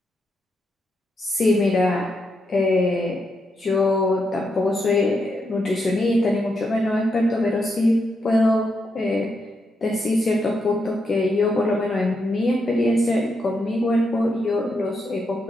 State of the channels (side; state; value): both; normal; correlation 0.82